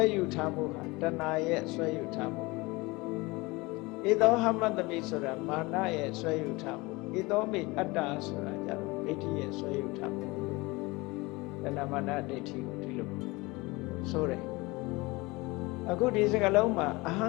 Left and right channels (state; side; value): quieter; right; 23.6 dB